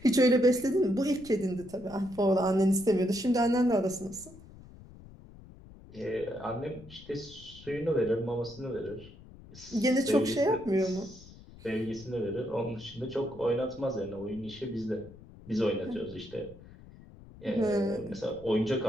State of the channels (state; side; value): noise; left; rumble, 19 dB below the sound